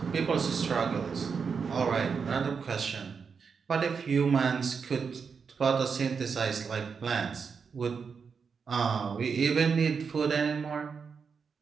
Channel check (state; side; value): quieter; left; 5.8 dB